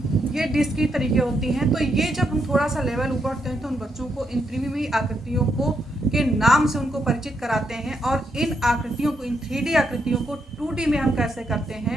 ये डिस्क की तरीके होती हैं। तो ये जब हम थोड़ा सा लेवल ऊपर उठते हैं तो उन बच्चों को इन त्रिविमीय आकृतियों को के नाम से उनको परिचित कराते हैं, और इन आकृतियों को, इन 3D आकृतियों को 2D में हम कैसे करते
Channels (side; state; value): both; normal; correlation 0.79